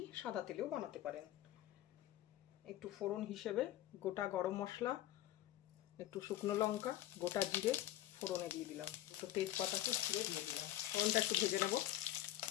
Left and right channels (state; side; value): quieter; right; 13.9 dB